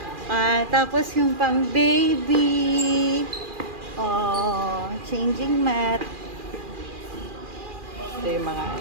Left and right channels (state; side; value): late; left; 2.4 ms